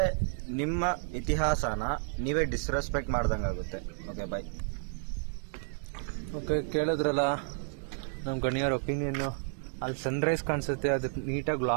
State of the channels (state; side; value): silent; left; digital silence